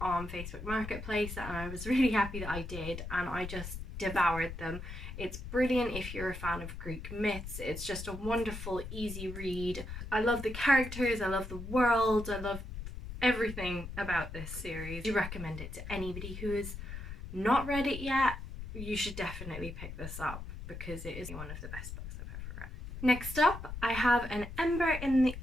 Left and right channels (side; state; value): left; noise; rumble, 9 dB below the sound